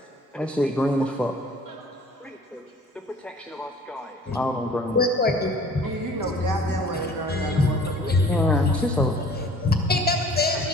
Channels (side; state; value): both; normal; correlation 0.50